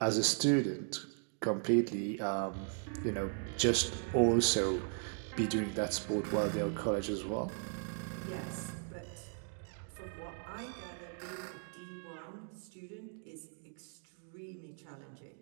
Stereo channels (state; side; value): silent; left; 53 dB below the other